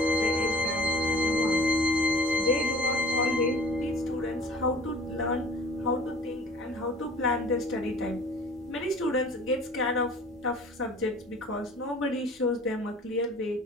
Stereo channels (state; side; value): normal; both; correlation 0.47